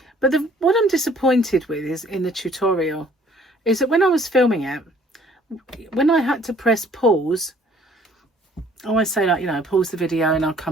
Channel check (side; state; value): both; normal; correlation 0.57